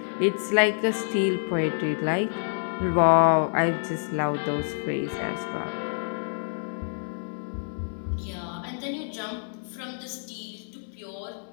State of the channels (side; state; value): right; silent; digital silence